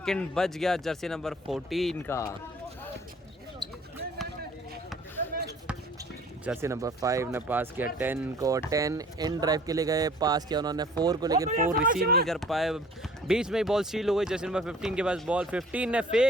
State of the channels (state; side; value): normal; both; correlation 0.51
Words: बच गया जर्सी नंबर 14 का। जर्सी नंबर 5 ने पास किया 10 को, 10 इन ड्राइव के लिए गए, पास किया उन्होंने 4 को, लेकिन 4 रिसीव नहीं कर पाए, बीच में ही बॉल स्टील हो गई। जर्सी नंबर 15 के पास बॉल, 15 ने